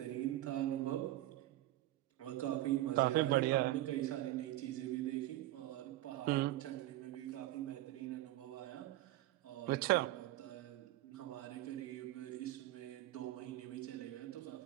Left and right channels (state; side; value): quieter; left; 15.7 dB